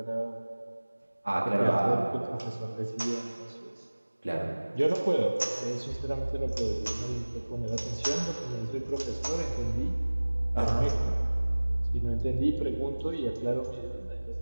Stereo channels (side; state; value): both; inverted; correlation -1.00